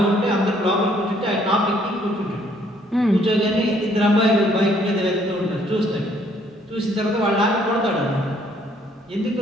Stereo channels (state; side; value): normal; both; correlation 0.65